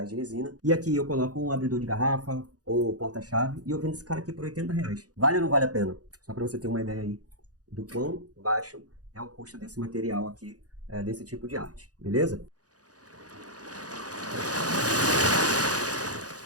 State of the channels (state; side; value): late; left; 0.68 ms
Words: de resina. E aqui eu coloco um abridor de garrafa ou porta-chave e eu vendo esse cara aqui por R$ 80. Vale ou não vale a pena? Só para você ter uma ideia aí do quão baixo é o custo desse material aqui, desse tipo de arte, beleza?